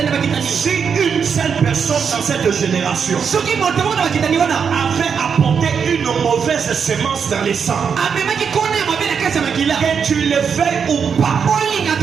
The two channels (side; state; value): left; quieter; 6.6 dB